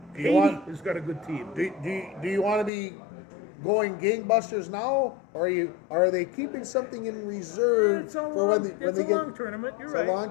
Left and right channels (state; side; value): drops out; right; at 2.7 s